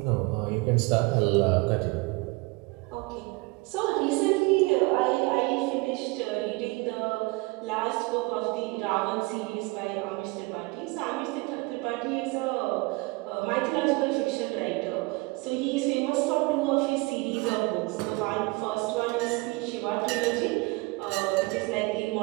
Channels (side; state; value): left; quieter; 25.7 dB